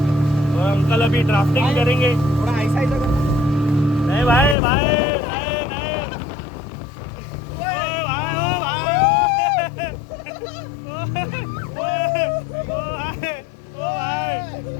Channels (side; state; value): right; drops out; at 4.5 s